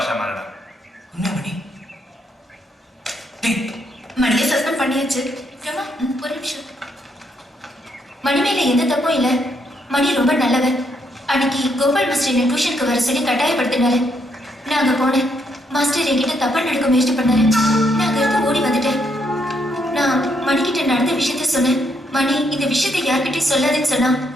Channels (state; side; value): normal; both; correlation 0.75